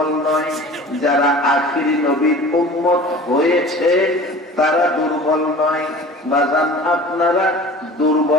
নয়, যারা আখিরি নবীর উম্মত হয়েছে তারা দুর্বল নয়। বাজান, আপনারা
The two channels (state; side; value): normal; both; correlation 0.41